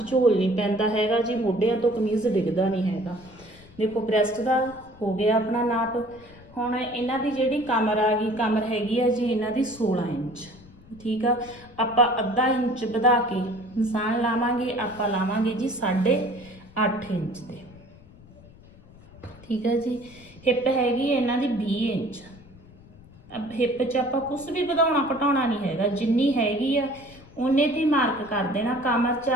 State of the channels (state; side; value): noise; left; rumble, 23 dB below the sound